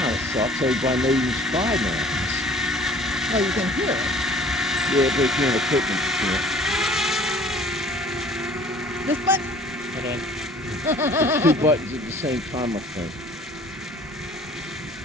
of sucks. Everybody knows you spy now. Oh, you can hear it. Yeah, but if you're in equipment, you can't. This button? Hold on. There's two buttons at the same time, I think.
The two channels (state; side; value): normal; both; correlation 0.50